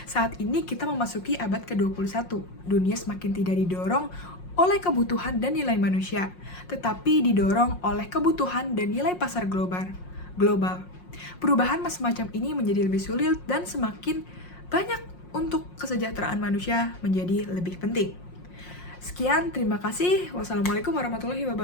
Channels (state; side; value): late; right; 5.6 ms